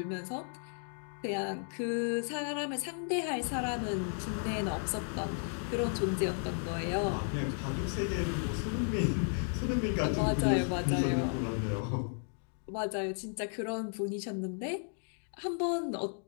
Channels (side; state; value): right; silent; 55 dB below the other